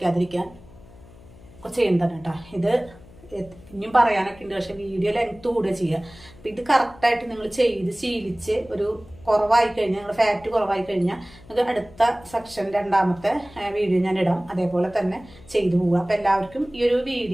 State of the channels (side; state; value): left; noise; hum, 22 dB below the sound